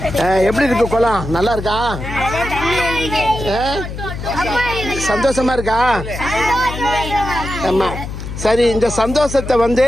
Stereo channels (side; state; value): left; noise; hum, 8 dB below the sound